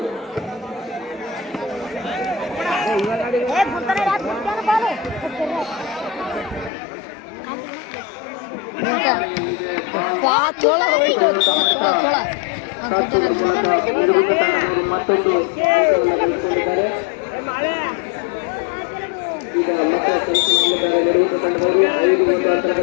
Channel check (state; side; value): drops out; right; at 6.7 s